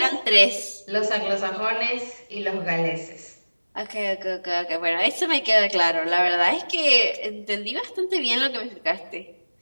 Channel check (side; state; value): both; inverted; correlation -1.00